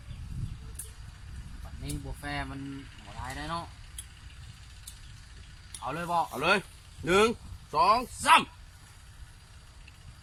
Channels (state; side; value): identical; both; correlation 1.00